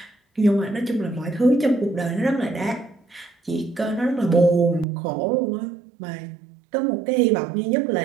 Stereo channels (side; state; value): left; drops out; at 4.9 s